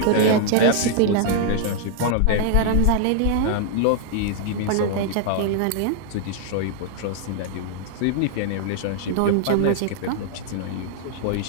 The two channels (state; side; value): different; both; correlation -0.01